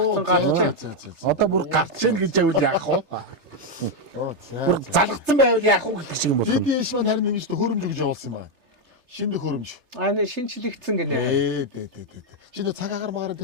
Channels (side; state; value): left; late; 3.3 ms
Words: гарч. Одоо бүр гарч ийн гэж явал яах вэ? Бүр За. залгацсан байвал яах вэ гэх шиг юм байна. Дидиш маань харин ингэж хөрөмж гэж явуулсан юм байна. Шинэ хөрөмж. Аа шинчлэгдсэн гинэ. Дээ. Чиний цаг агаар магаар